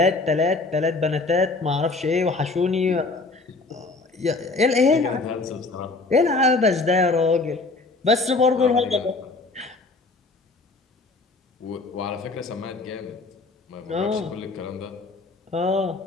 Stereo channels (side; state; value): right; quieter; 3.5 dB